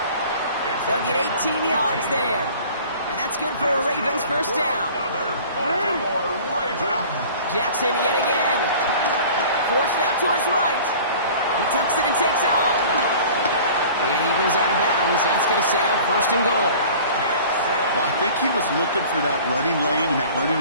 They'll get 18 yards there. And that's good for a Ravens first down. Jackson yet again. Forced out to his right. He tucks it and takes off. And he goes out of bounds. That's going to set up 1st and goal. Well, I think he was looking for that running lane and that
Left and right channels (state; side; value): inverted; both; correlation -0.45